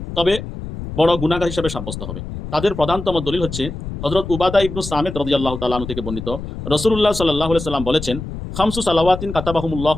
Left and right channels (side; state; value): left; noise; rumble, 8 dB below the sound